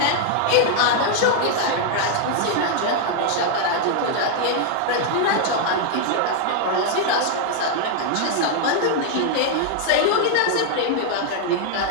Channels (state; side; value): different; both; correlation 0.00